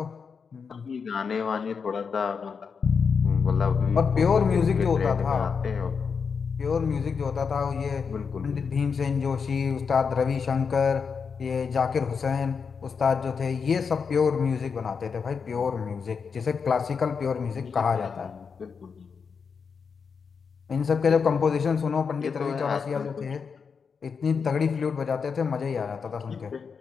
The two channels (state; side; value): quieter; right; 5.8 dB